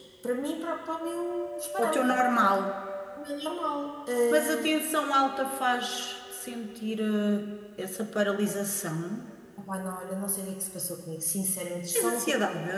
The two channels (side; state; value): both; identical; correlation 1.00